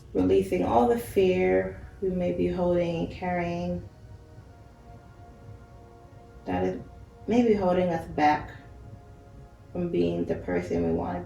Releasing all the fear we may be holding and carrying that is maybe holding us back from being the person we want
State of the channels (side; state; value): both; identical; correlation 1.00